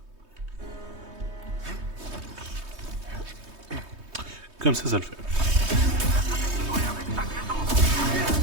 Comme ça le fait.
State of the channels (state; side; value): late; left; 3.2 ms